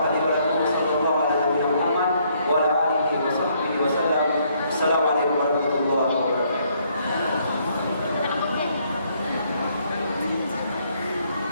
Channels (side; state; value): both; inverted; correlation -0.69